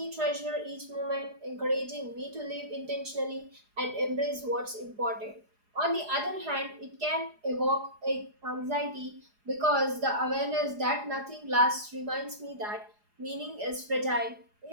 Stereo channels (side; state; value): left; late; 4.8 ms